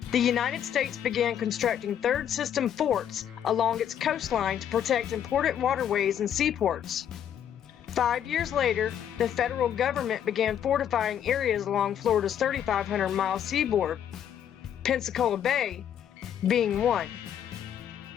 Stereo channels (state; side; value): quieter; right; 9.5 dB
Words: the United States began constructing third system forts along its coastline to protect important waterways and seaports. 5 years later, the federal government began fortifying areas along Florida's 3,500-mile seaboard, Pensacola Bay being one.